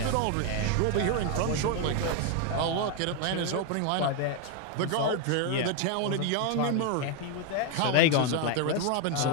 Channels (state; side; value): different; both; correlation 0.01